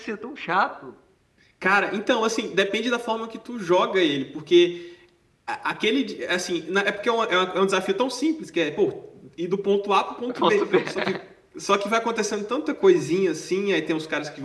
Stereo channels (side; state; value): both; identical; correlation 1.00